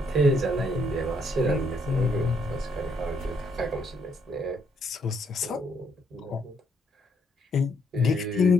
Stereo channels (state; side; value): normal; both; correlation 0.72